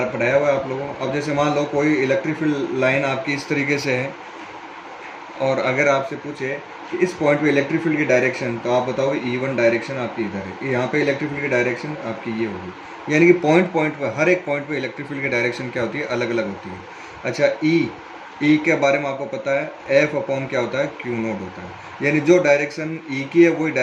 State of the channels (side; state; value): both; identical; correlation 1.00